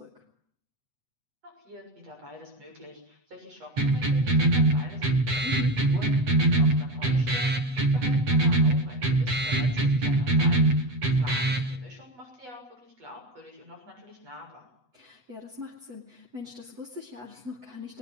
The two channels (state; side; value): late; left; 8.1 ms